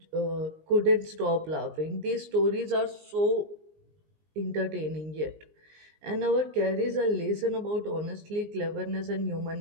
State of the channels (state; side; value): late; left; 19 ms